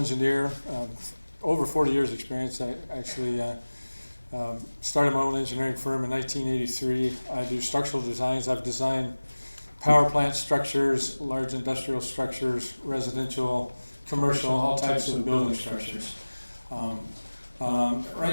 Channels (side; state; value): both; inverted; correlation -1.00